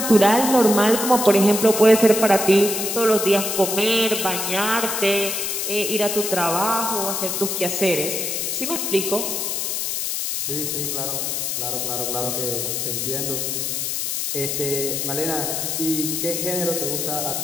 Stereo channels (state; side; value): noise; left; hiss, 1 dB below the sound